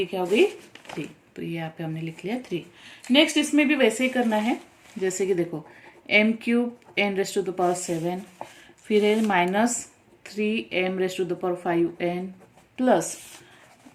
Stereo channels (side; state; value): both; identical; correlation 1.00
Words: क्या हो गई 3, तो ये यहाँ पे हमने लिख लिया 3। नेक्स्ट इसमें भी वैसे ही करना है, जैसे कि देखो m³ n⁻⁷, फिर है -3m⁻⁵n